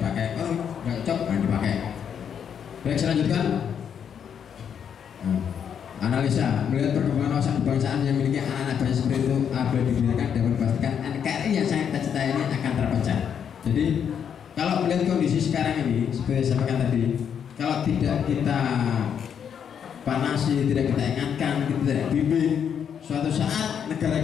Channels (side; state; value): right; quieter; 8.0 dB